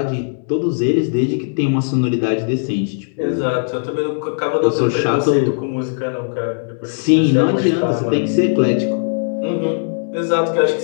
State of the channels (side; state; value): right; silent; digital silence